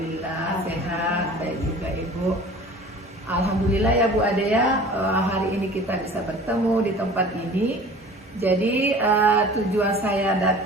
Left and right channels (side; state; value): both; normal; correlation 0.43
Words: sehat, baik juga Ibu. Alhamdulillah ya Bu Ade ya, hari ini kita bisa bertemu di tempat ini. Jadi tujuan saya